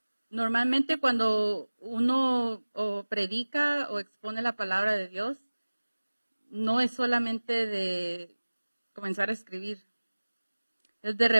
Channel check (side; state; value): both; inverted; correlation -1.00